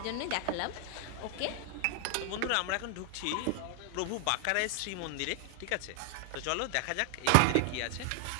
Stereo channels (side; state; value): both; different; correlation 0.00